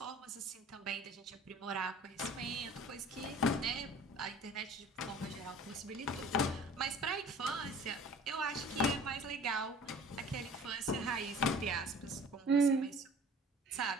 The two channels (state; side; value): normal; both; correlation 0.47